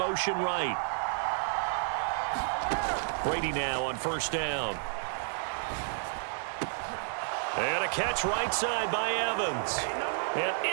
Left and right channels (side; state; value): left; silent; digital silence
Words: right. Brady now on first down. And a catch right side by Evans.